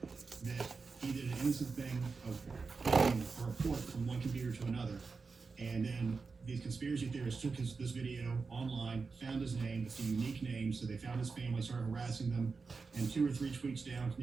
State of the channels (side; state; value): left; quieter; 4.6 dB